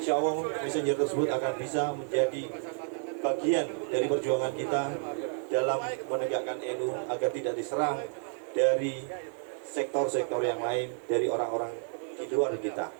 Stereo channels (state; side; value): silent; left; 57 dB below the other